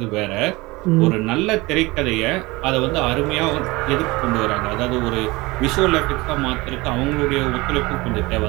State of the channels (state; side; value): quieter; left; 22.3 dB